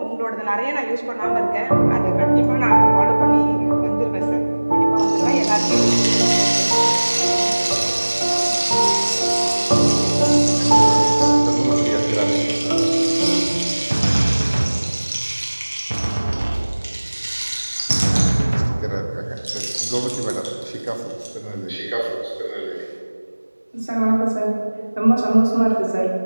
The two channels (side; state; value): both; inverted; correlation -1.00